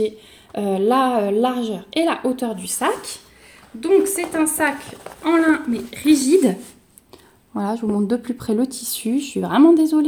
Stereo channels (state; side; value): identical; both; correlation 1.00